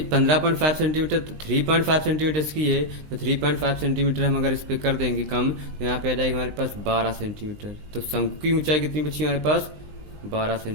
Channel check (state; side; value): late; left; 19 ms